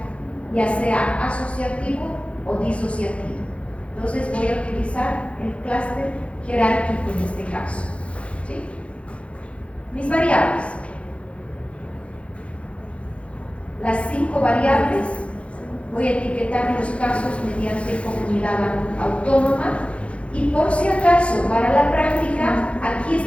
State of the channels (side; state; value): right; late; 0.061 ms